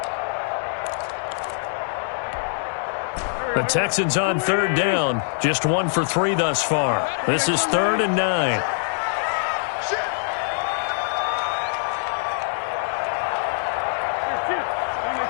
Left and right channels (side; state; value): right; silent; digital silence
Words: The Texans on 3rd down, just 1 for 3 thus far. This is 3rd and 9.